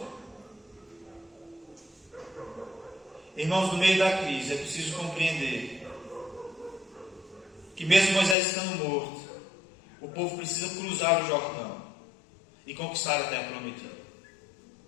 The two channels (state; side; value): drops out; right; at 8.3 s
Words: Irmãos, no meio da crise é preciso compreender que mesmo Moisés estando morto, o povo precisa cruzar o Jordão e conquistar a terra prometida.